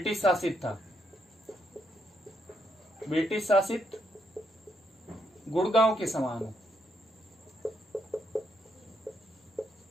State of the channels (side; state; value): both; normal; correlation 0.77